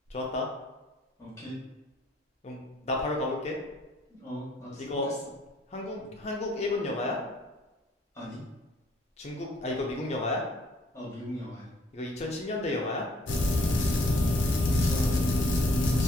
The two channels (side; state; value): both; normal; correlation 0.63